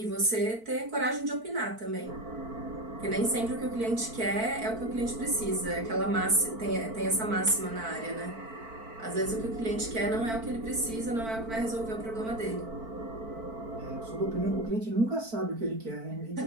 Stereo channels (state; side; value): late; left; 4.5 ms